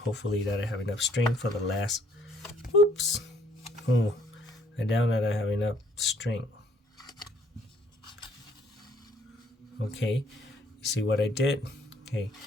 hopefully that I have enough string for the last. Oops. Oh, I doubt that I have enough string. Okay, you see what I did? Okay,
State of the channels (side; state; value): both; normal; correlation 0.63